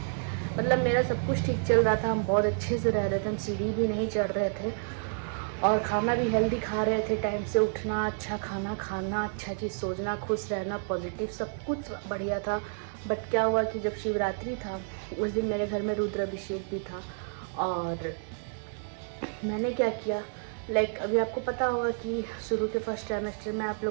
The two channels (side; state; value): left; silent; digital silence